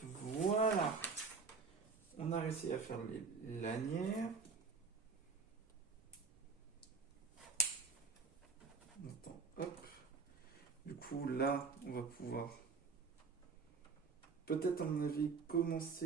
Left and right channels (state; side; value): quieter; left; 4.9 dB